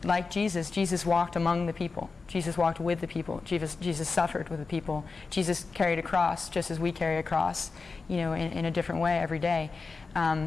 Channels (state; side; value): quieter; right; 4.3 dB